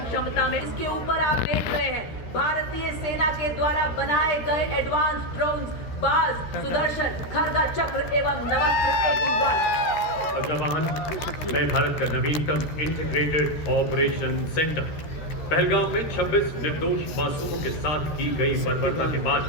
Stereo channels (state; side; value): late; right; 13 ms